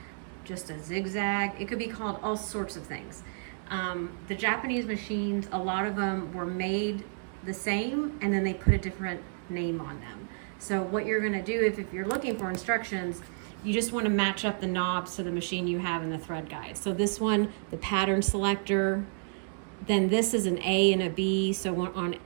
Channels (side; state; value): left; silent; digital silence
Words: just a zigzag. It could be called all sorts of things. The Japanese machines, a lot of them were made the same and then they put a different name on them. So what you're gonna do if you're looking for instructions, you just wanna match up the knobs to the machine you have in the thread guide. So this one, the pattern selector, then this is an A and a B. So on